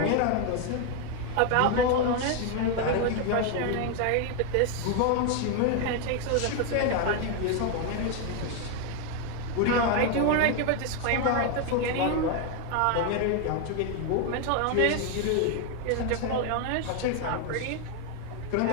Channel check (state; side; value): different; both; correlation 0.01